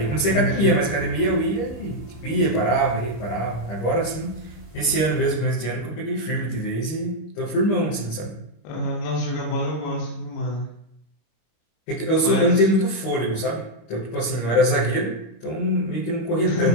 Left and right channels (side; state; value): right; late; 25 ms